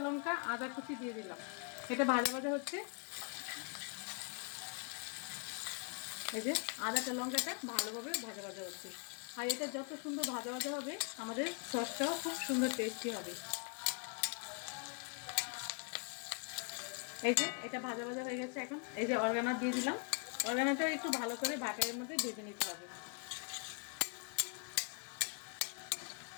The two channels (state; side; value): quieter; right; 36.6 dB